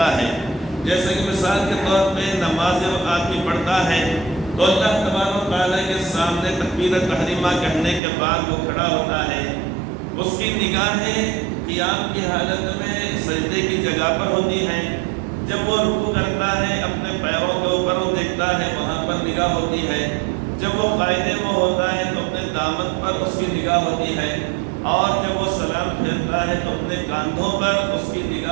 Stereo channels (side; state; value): left; drops out; at 8.0 s